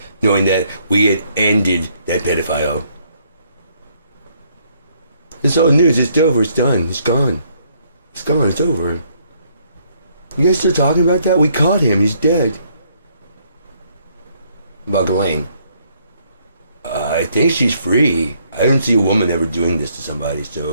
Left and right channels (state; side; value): inverted; both; correlation -0.68